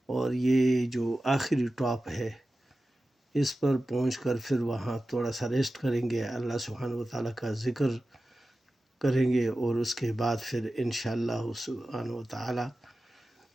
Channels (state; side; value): normal; both; correlation 0.94